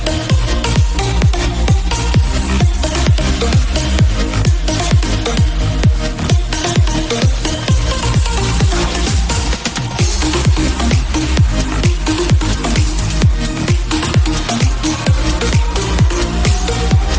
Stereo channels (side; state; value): both; identical; correlation 1.00